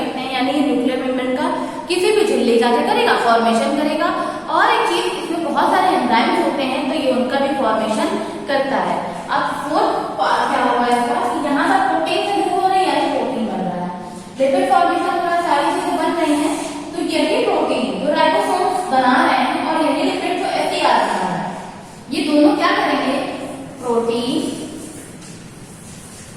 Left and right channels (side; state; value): both; identical; correlation 1.00